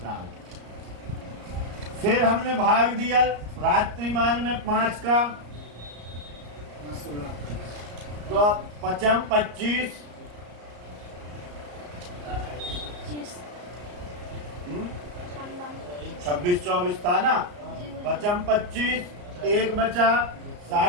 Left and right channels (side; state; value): left; late; 34 ms